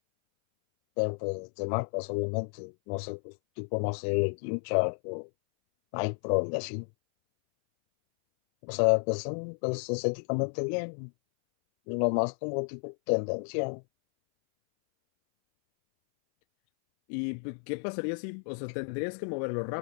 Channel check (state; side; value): silent; right; 57 dB below the other